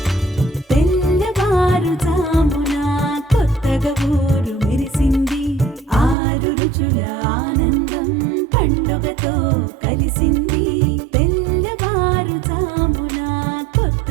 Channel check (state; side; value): drops out; left; at 6.2 s